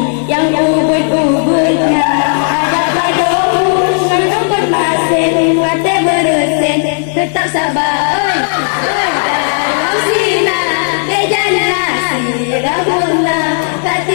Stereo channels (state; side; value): silent; right; digital silence